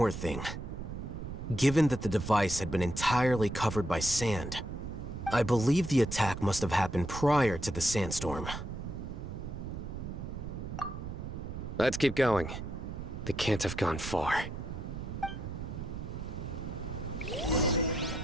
thing. Given that the device had been entirely covered by sand, I believe the attack must have happened prior to the sandstorm. Let's keep going. They can't have gone far.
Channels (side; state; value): right; noise; rumble, 7 dB below the sound